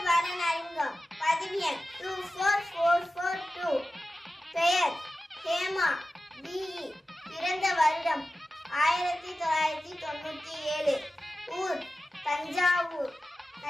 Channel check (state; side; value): normal; both; correlation 0.94